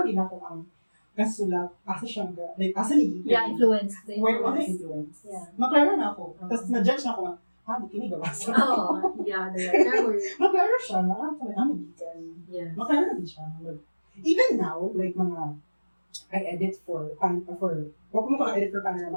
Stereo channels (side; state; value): both; inverted; correlation -1.00